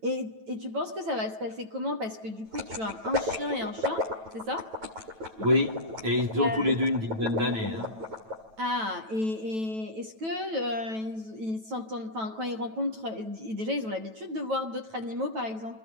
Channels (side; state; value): left; late; 9.1 ms